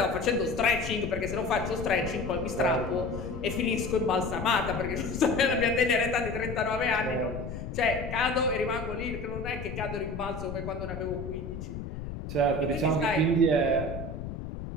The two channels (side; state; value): left; noise; rumble, 8 dB below the sound